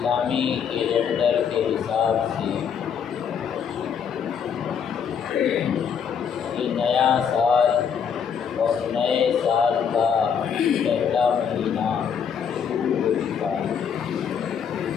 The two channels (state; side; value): quieter; right; 7.2 dB